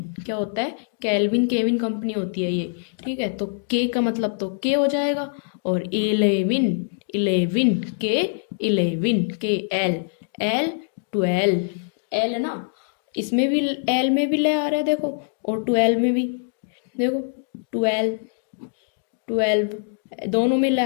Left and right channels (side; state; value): right; silent; digital silence